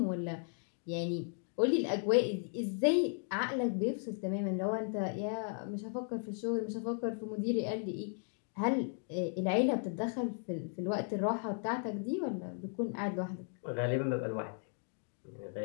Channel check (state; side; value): silent; right; 54 dB below the other